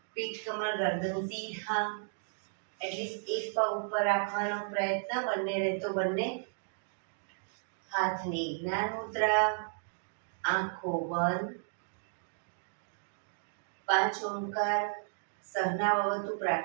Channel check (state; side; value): silent; left; digital silence